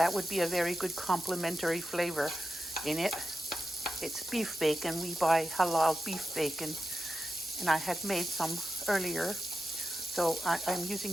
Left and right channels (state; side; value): normal; both; correlation 0.90